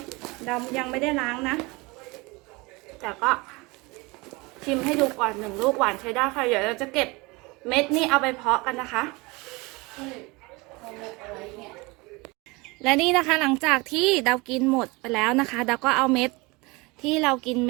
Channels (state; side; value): quieter; left; 25.0 dB